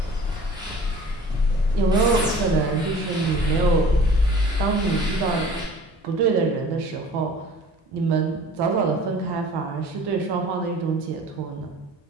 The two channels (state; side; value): normal; both; correlation 0.46